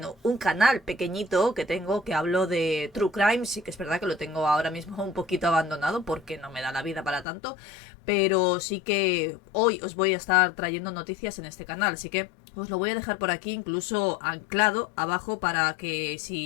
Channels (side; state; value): right; drops out; at 7.2 s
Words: un canal pequeñito que tengo, que hablo de True Crime. Sí que es verdad que lo tengo ahora mismo un poquito abandonado porque no me da la vida para tanto, pero sí que hoy os voy a estar trayendo noticias en este canal, así que os lo voy a dejar por aquí incluso anclado abajo para que